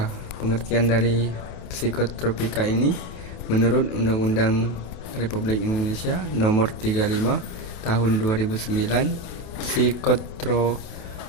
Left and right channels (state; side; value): late; right; 28 ms